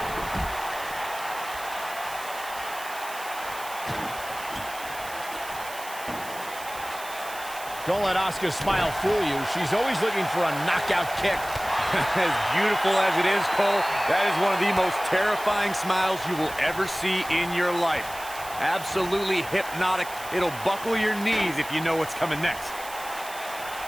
Don't let Asuka's smile fool you. She's always looking for a knockout kick. As beautiful as it is, Cole, that is one of the most terrifying smiles you will ever see in your life. Absolutely hypnotic. It'll buckle your knees if you know what's coming next.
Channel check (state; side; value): noise; right; hiss, 14 dB below the sound